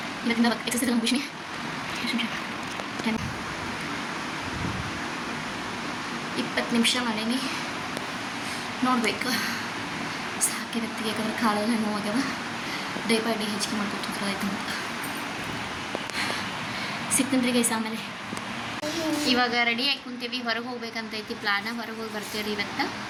ಇದರಿಂದ ಎಕ್ಸಸೈಸ್ ನಮ್ಮ ಖುಷಿ. 20 ನಿಮಿಷ ಮಾಡೀನಿ, ನೋಡ್ಬೇಕು ಸಾಕಿರತ್ತಿ. ಯಾಕಂದ್ರೆ ಕಾಲೆಲ್ಲ ನೋವಾಗ್ಯವ. ಡೇ ಬೈ ಡೇ ಹೆಚ್ಚಿಗೆ ಮಾಡ್ಕೊತಿದ್ರು ಆಯ್ತು ಅಂತ ಸಿಗ್ತೀನಿ ಗೈಸ್. ಆಮೇಲೆ ಇವಾಗ ರೆಡಿ ಆಗಿ ಕುಂತೀವಿ, ಹೊರಗೆ ಹೋಗ್ಬೇಕಂತೈತಿ ಪ್ಲಾನ. ಹೊರಗೆ ಹೋಗಿ ಬರ್ತೀವಿ ಇವತ್ತು.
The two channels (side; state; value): both; identical; correlation 1.00